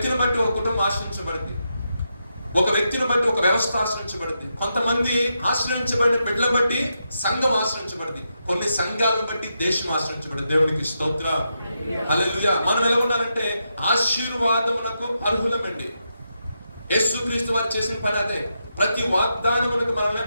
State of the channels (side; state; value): both; inverted; correlation -0.84